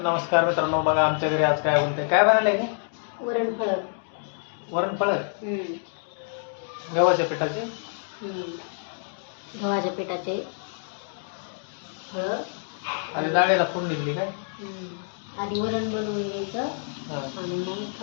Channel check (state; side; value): silent; right; 60 dB below the other